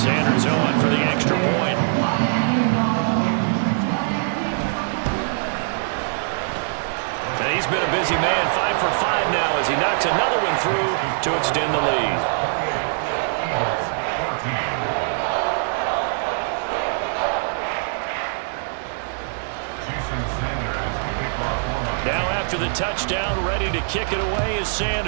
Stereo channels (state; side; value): silent; left; 56 dB below the other